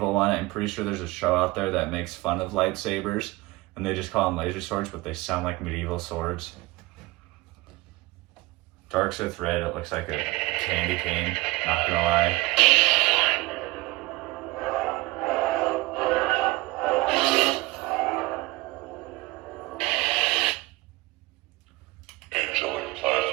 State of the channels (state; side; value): quieter; left; 20.6 dB